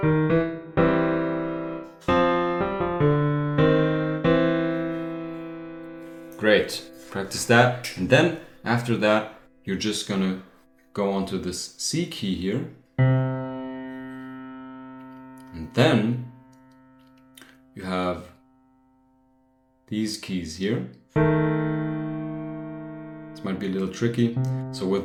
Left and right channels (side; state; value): both; identical; correlation 1.00